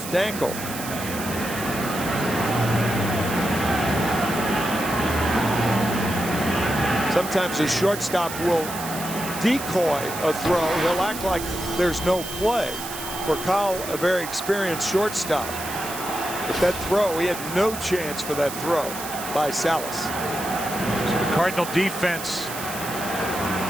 ankle. Sometimes a shortstop will decoy a throw. He'll act like there's no play. for Kyle, a very experienced shortstop. But that throw, he had no chance for that throw by Salas. So the Cardinal defense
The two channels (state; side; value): noise; right; hiss, 9 dB below the sound